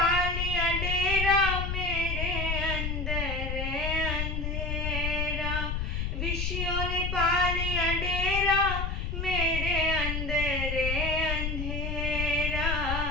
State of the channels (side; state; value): left; noise; rumble, 2 dB below the sound